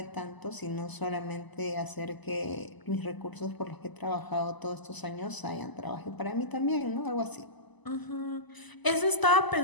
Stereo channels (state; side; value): late; right; 1.0 ms